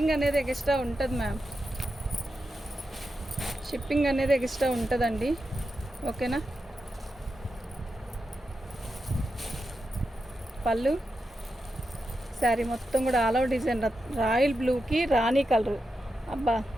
అనేది ఎక్స్ట్రా ఉంటుంది మ్యామ్, షిప్పింగ్ అనేది ఎక్స్ట్రా ఉంటుందండి. ఓకేనా, పళ్ళు శారీ మొత్తం కూడా ఆల్ ఓవర్ డిజైన్ రాయల్ బ్లూకి రాణి కలరు. అబ్బా,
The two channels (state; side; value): normal; both; correlation 0.88